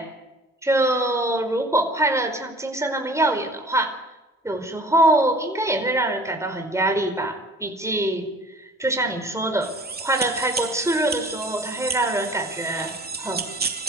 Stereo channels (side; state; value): both; normal; correlation 0.47